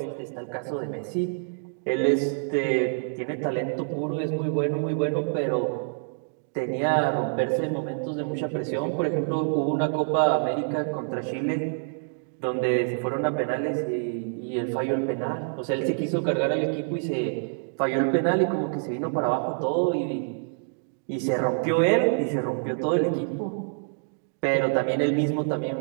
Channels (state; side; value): silent; left; digital silence